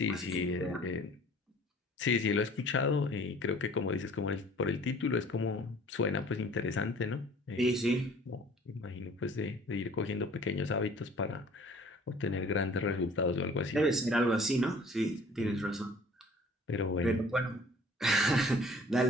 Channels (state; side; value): normal; both; correlation 0.51